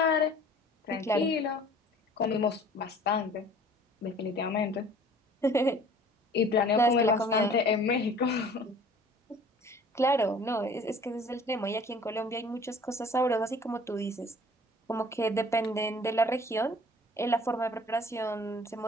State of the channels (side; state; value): both; normal; correlation 0.50